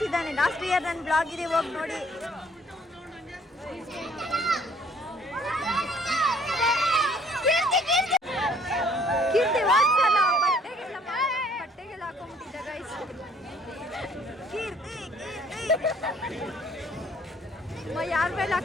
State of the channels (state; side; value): normal; both; correlation 0.60